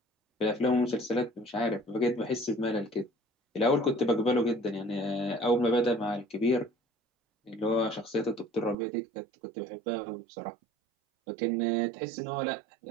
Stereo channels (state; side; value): drops out; left; at 8.8 s